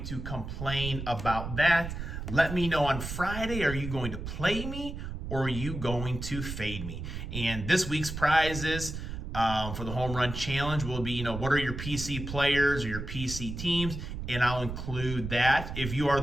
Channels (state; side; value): noise; right; rumble, 7 dB below the sound